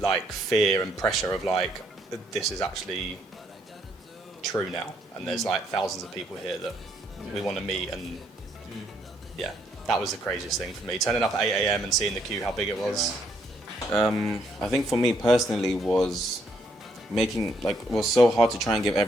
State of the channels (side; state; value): both; normal; correlation 0.72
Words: like fear and pressure of like this is actually true now, and there's like thousands of people here that we want to meet, and yeah, that was the craziest thing for me. Turning up at 8 a.m. and seeing the queue, how big it was. I think for me personally was was so hard to try and give